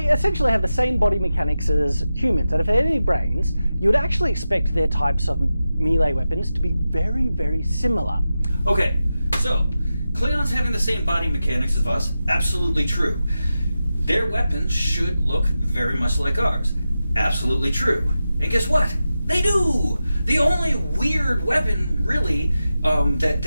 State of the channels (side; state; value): both; inverted; correlation -0.92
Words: essentially have the same body mechanics as humans, and if they had any brains, you would actually expect their types of melee weapons to be very, very similar. Okay, so Klingons having the same body mechanics as us, absolutely true. Their weapons should look very much like ours, absolutely true. And guess what? They do! The only weird weapon, really,